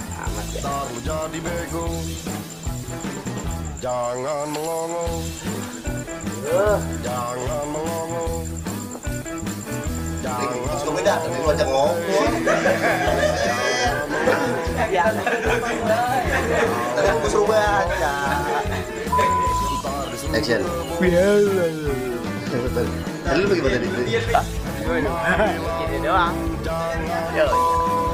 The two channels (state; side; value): identical; both; correlation 1.00